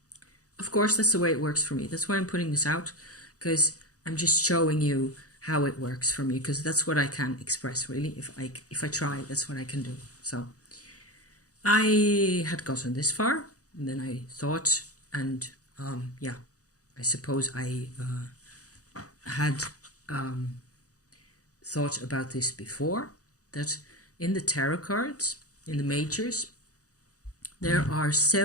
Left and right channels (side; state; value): right; late; 0.66 ms